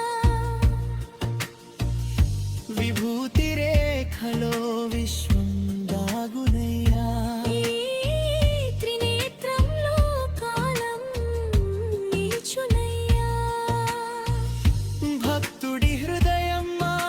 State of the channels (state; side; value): identical; both; correlation 1.00